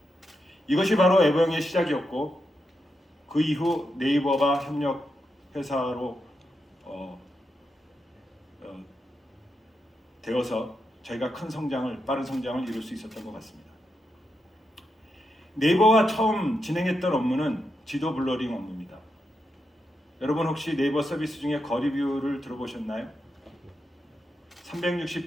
이것이 바로 에버영의 시작이었고 그 이후 네이버가 협력 회사로 되어서 저희가 빠른 성장을 이룰 수 있었던 것 같습니다. 네이버가 처음 진행했던 업무는 지도 블러링 업무입니다. 여러분 혹시 네이버 서비스 중에 거리뷰를 들어보셨나요?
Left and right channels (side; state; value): both; normal; correlation 0.85